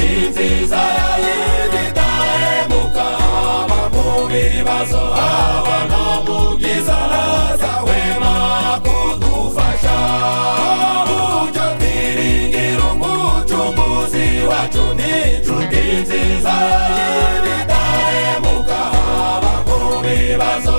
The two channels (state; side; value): inverted; both; correlation -1.00